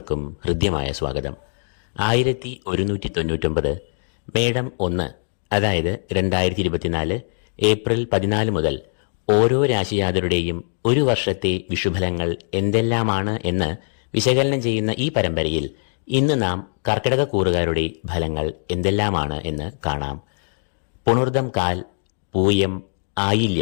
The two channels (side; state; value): right; silent; digital silence